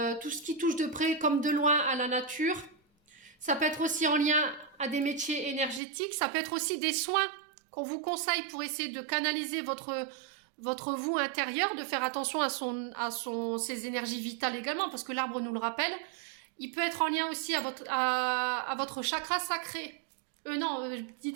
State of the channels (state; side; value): drops out; left; at 5.8 s